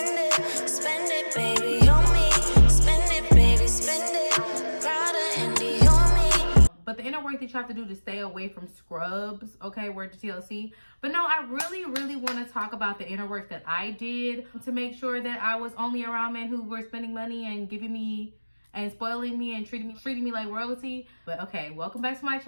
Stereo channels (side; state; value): both; inverted; correlation -1.00